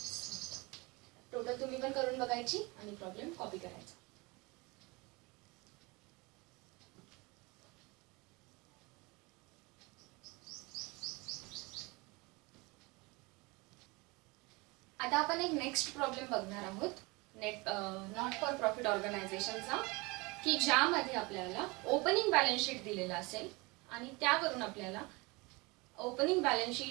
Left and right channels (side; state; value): left; quieter; 25.6 dB